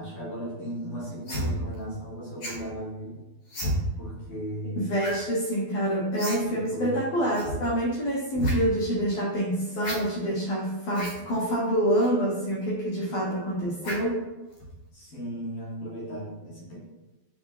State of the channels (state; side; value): late; right; 12 ms